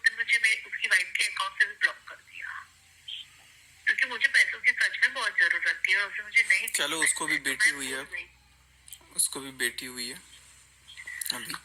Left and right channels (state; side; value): identical; both; correlation 1.00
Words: मुझे उसकी वाइफ के अकाउंट से भी ब्लॉक कर दिया, क्योंकि मुझे पैसों की सच में बहुत जरूरत थी और उसने मुझे नहीं। चलो उसको भी बेटी हुई है, उसको भी बेटी हुई है अभी।